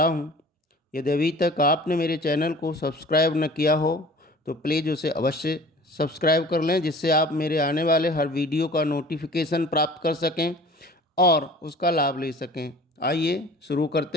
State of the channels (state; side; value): normal; both; correlation 0.45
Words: हूं। यदि अभी तक आपने मेरे चैनल को सब्सक्राइब न किया हो तो प्लीज़ उसे अवश्य सब्सक्राइब कर लें, जिससे आप मेरे आने वाले हर वीडियो का नोटिफिकेशन प्राप्त कर सकें और उसका लाभ ले सकें। आइए शुरू